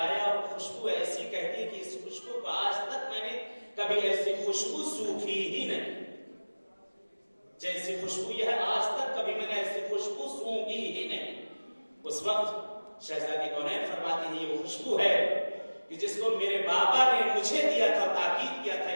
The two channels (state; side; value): inverted; both; correlation -1.00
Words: اور خوشبو ایسی کہتی کہ اس خوشبو کو آج تک میں نے کبھی ایسی خوشبو سوکھی ہی نہیں، جیسی خوشبو یہ ہے آج تک کبھی میں نے ایسی خوشبو سونگھی ہی نہیں. اس وقت شہزادی کونین فرماتے ہیں یہ وہ خوشبو ہے کہ جس کو میرے بابا نے مجھے دیا تھا، تاکید کیا تھا